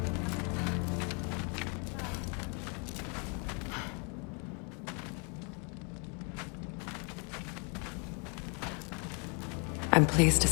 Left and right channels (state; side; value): quieter; right; 36.3 dB